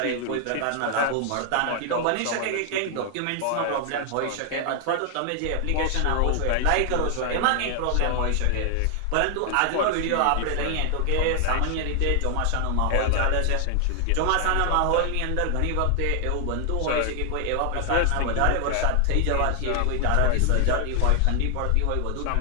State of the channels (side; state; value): both; different; correlation 0.00